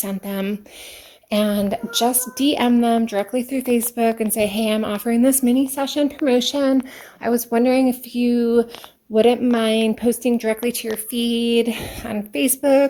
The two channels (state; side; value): identical; both; correlation 1.00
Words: them, and just DM them directly through Facebook and say, hey, I'm offering this mini session promotion. I was wondering if you wouldn't mind posting directly to your feed on Facebook